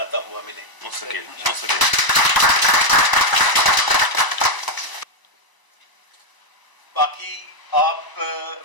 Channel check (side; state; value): right; late; 1.0 ms